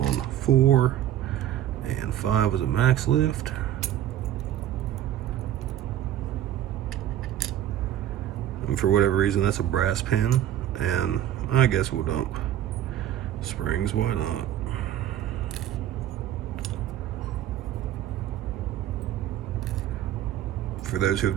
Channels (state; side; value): quieter; left; 11.8 dB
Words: 4, and 5 was a max lift. And for whatever reason, that's a brass pin, and I guess we'll dump springs, why not? For those who have